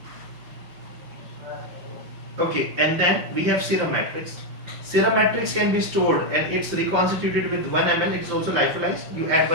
Okay, and then we have serum matrix. Serum matrix can be stored and it's reconstituted with 1 ml. It's also lyophilized. You add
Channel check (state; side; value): late; left; 5.8 ms